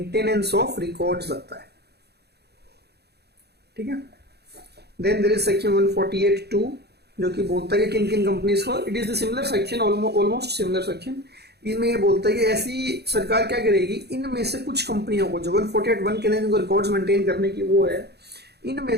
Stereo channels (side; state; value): left; late; 0.48 ms